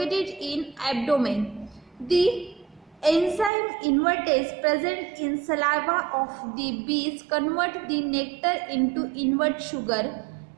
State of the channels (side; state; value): left; drops out; at 3.5 s